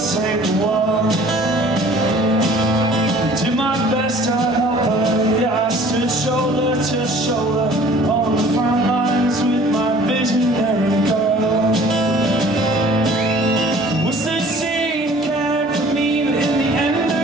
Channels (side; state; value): both; normal; correlation 0.50